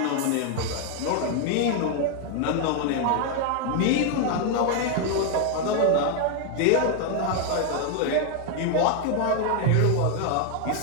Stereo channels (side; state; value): both; different; correlation 0.00